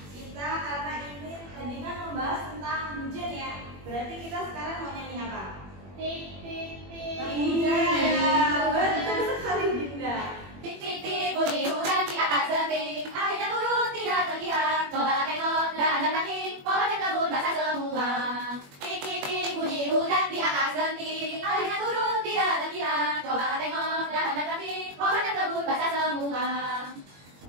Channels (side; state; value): left; late; 21 ms